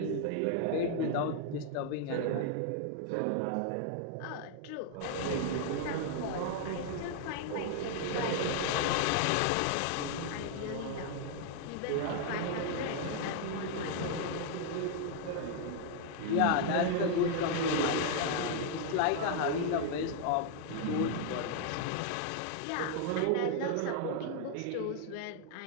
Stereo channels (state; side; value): different; both; correlation 0.00